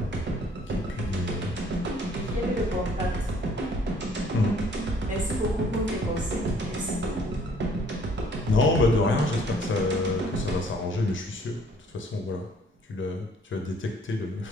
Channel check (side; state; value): both; normal; correlation 0.60